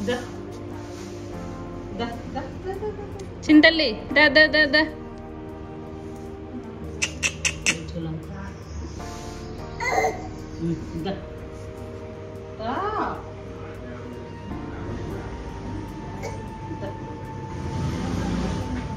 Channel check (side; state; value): both; identical; correlation 1.00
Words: చింతల్లి దా దా దా దా.